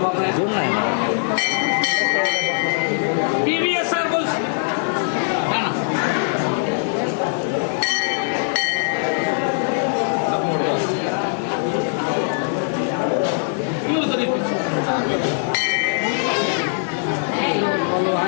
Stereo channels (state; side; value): silent; right; 63 dB below the other